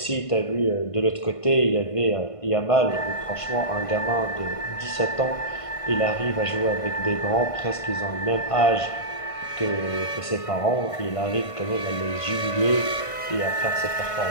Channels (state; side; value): late; right; 1.5 ms